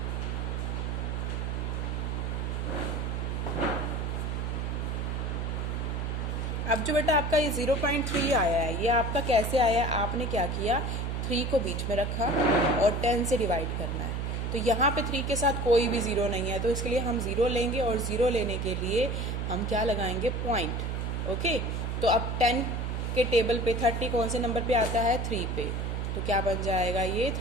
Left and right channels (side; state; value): right; noise; hum, 2 dB below the sound